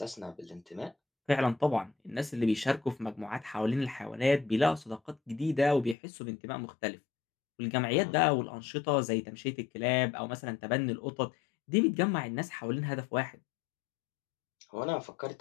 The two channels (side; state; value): right; drops out; at 6.0 s